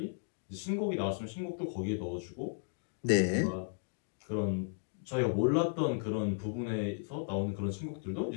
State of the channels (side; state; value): right; silent; digital silence